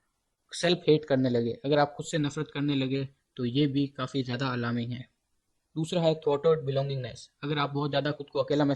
सेल्फ हेट करने लगे, अगर आप खुद से नफरत करने लगे, तो ये भी काफ़ी ज़्यादा अलार्मिंग है। दूसरा है थॉटवर्ड बिलोंगिंगनेस। अगर आप बहुत ज़्यादा खुद को अकेला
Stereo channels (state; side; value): identical; both; correlation 1.00